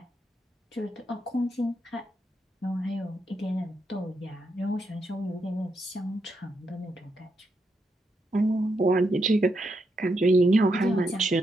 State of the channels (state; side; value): normal; both; correlation 0.81